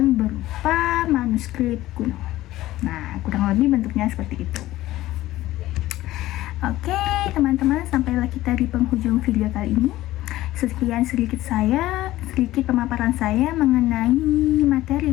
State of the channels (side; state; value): right; quieter; 15.9 dB